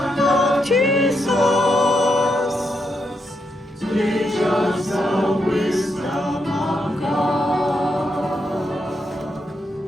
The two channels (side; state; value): both; normal; correlation 0.81